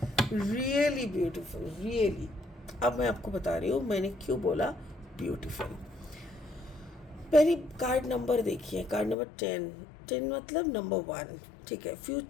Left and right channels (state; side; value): drops out; right; at 9.2 s